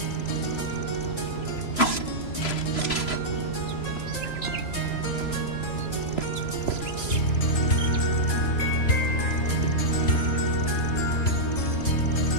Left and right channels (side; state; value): right; late; 3.0 ms